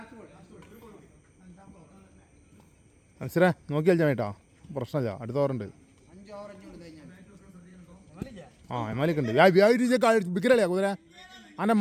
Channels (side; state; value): both; identical; correlation 1.00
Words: മനസ്സിലാ നോക്കി കളിച്ചാൽ കേട്ടോ പ്രശ്നമില്ല അടുത്ത ഓറുണ്ട് ആ എമാലിക്ക് ഉണ്ട് വിക്കലല്ലേ കുതിര അൻ്റെ